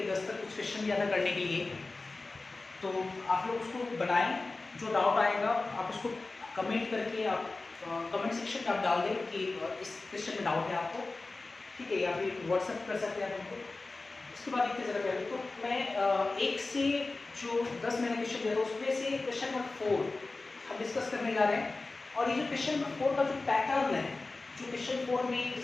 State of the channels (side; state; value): right; quieter; 3.5 dB